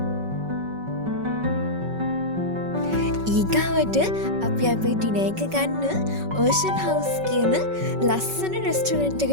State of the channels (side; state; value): left; late; 5.3 ms